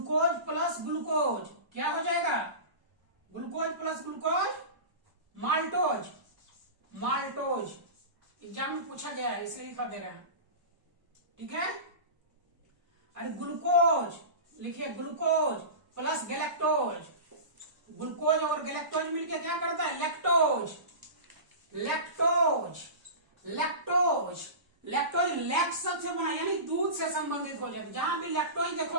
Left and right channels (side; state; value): left; late; 1.0 ms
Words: प्लस ग्लूकोज क्या हो जाएगा? Glucose plus glucose, maltose. Exam में पूछा गया है इसलिए लिखा दे रहा है, ठीक है। अरे ग्लूकोज, लिखिए ग्लूकोज प्लस गैलेक्टोज। ग्लूकोज और गैलेक्टोज मिलकर क्या करता है? लैक्टोज लैक्ट शब्द से बना, यानी दूध से संबंधित हो जाता है। जहां भी लैक्टोज